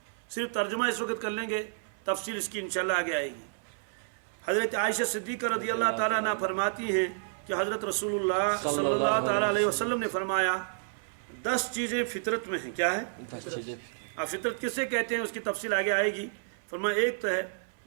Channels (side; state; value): left; silent; 58 dB below the other